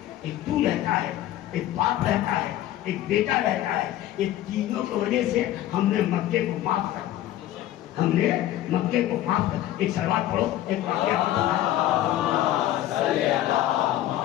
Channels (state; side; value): quieter; right; 13.4 dB